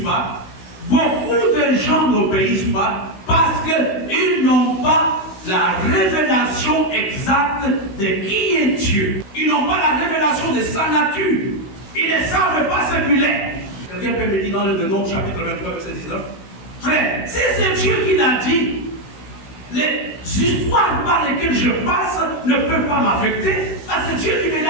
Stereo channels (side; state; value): right; late; 16 ms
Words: pas? Beaucoup de gens n'obéissent pas parce qu'ils n'ont pas la révélation exacte de qui est Dieu. Ils n'ont pas la révélation de sa nature. Ils ne savent pas ce qu'il est. Quelqu'un peut me dire dans le Nombre chapitre 23, verset 19. Frère, si c'est Dieu qui l'a dit, les histoires par lesquelles je passe ne peuvent pas m'affecter parce que Dieu qui me